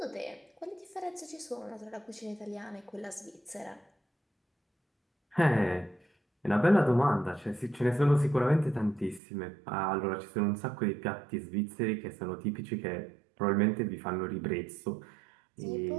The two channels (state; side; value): drops out; left; at 9.2 s